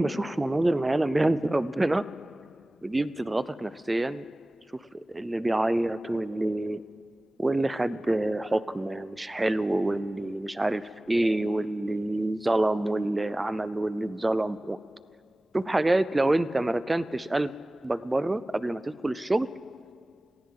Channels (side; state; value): both; normal; correlation 0.98